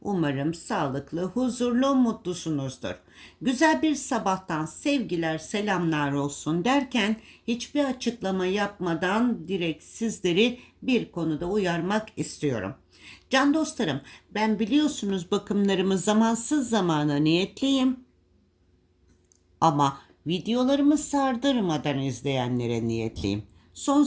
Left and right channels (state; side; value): identical; both; correlation 1.00